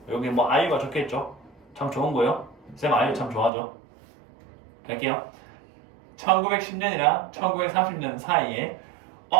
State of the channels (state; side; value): drops out; left; at 3.5 s